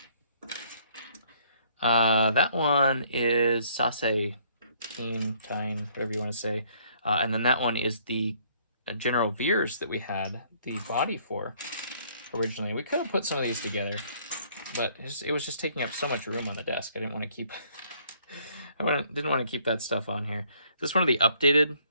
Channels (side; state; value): both; inverted; correlation -0.63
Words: That one is Sase, Tine, whatever you want to say. And then that one is the General Veers that we had the body for originally. We could have put some of these together, but it was just taking up so much room on the desk. I didn't want to keep didn't want to keep that stuff on here. Is this one of the updated?